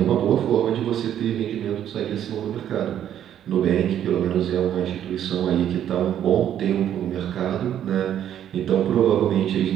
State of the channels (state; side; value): quieter; left; 10.4 dB